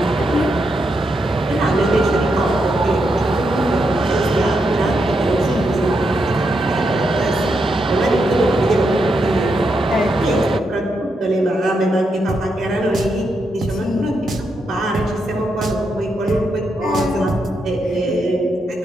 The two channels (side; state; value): both; normal; correlation 0.82